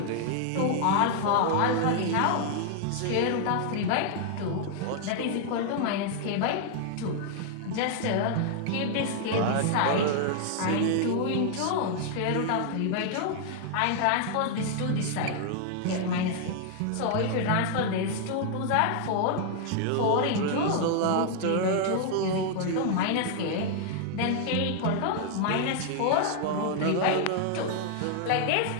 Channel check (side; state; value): both; different; correlation 0.00